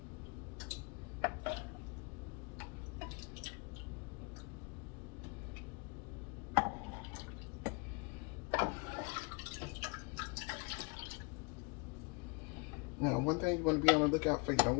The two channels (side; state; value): right; quieter; 30.6 dB